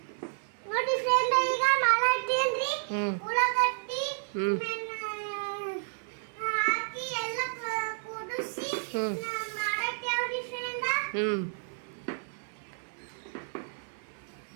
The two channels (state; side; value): silent; left; 57 dB below the other